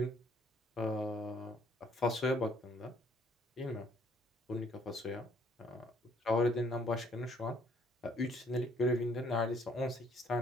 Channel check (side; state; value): both; normal; correlation 0.63